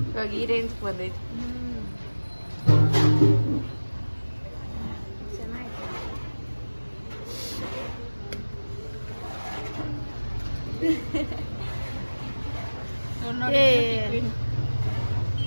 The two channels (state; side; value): inverted; both; correlation -1.00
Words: ಇವಾಗ ಈ ರೇಂಜ್ ಬಂದೈತಿ.